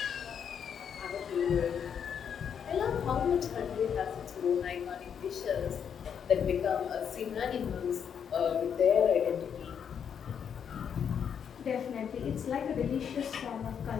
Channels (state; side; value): quieter; right; 7.8 dB